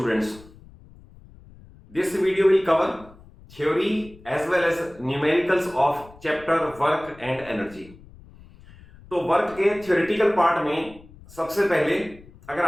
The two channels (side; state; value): left; noise; rumble, 22 dB below the sound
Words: this video will cover theory as well as numericals of chapter work and energy। तो work के theoretical part में सबसे पहले अगर